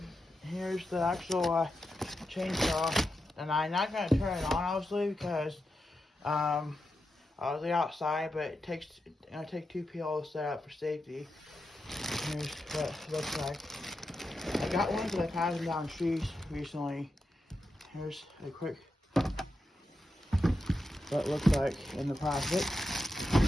Here's the actual chainsaw, and I'm not gonna turn it on obviously because I was outside, but it takes take 2 people to set up for safety. Here's what it looks like. I got one because I've had them down trees recently. Here's a quick what it looks like in the plastic.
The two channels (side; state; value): both; normal; correlation 0.88